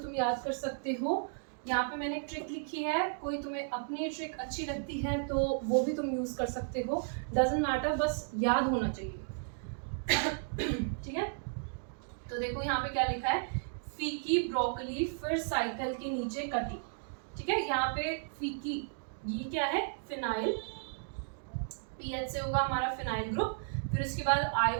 याद कर सकते हो। यहाँ पे मैंने एक ट्रिक लिखी है, कोई तुम्हें अपनी ट्रिक अच्छी लगती है तो वो भी तुम यूज़ कर सकते हो, डजंट मैटर, बस याद होना चाहिए, ठीक है। तो देखो यहाँ पे क्या लिखा है, फीकी ब्रोकली फिर साइकिल के नीचे कटी, ठीक है। यहाँ पे फीकी ये क्या है, फिनाइल, पीएच से होगा हमारा फिनाइल ग्रुप। फिर उसके बाद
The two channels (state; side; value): silent; left; digital silence